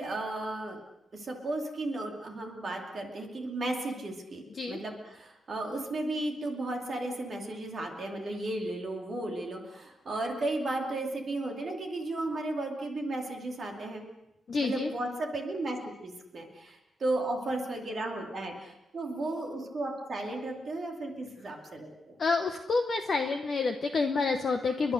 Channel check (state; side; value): normal; both; correlation 0.82